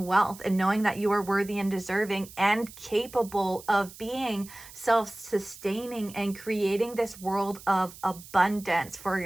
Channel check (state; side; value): noise; right; hiss, 18 dB below the sound